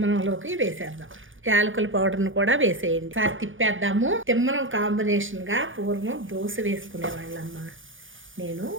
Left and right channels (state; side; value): late; left; 0.57 ms